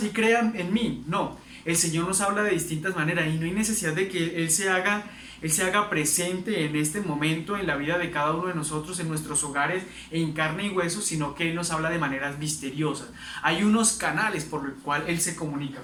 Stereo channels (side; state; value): both; identical; correlation 1.00